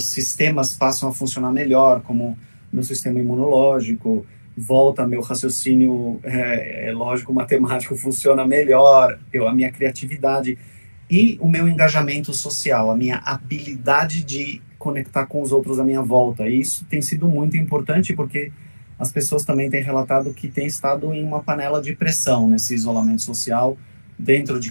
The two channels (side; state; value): both; inverted; correlation -1.00